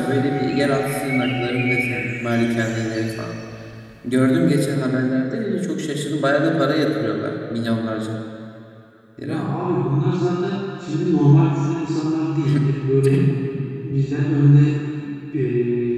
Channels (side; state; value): both; identical; correlation 1.00